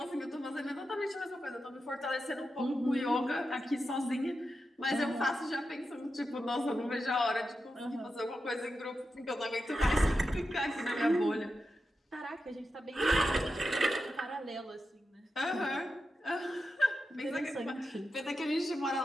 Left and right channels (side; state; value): both; normal; correlation 0.89